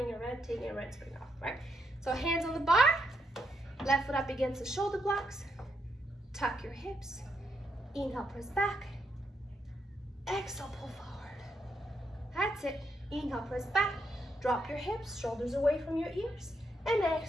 a red, taking a red spring off, right? So hands on the bar. Left foot up against the shoulder blocks. Tuck your hips. Inhale, press back. Exhale, pull forward. That's it. Inhale, press back. Drop your hips, shoulders away from your ears. And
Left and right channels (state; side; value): normal; both; correlation 0.79